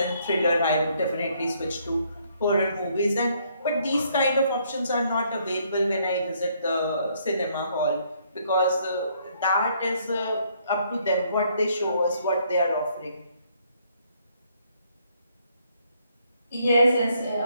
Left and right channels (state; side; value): inverted; both; correlation -0.69